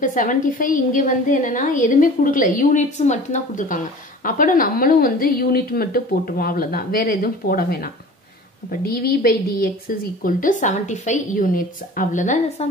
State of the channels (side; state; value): both; normal; correlation 0.42